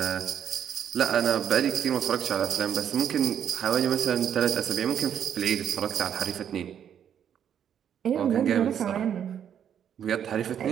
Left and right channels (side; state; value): left; quieter; 9.0 dB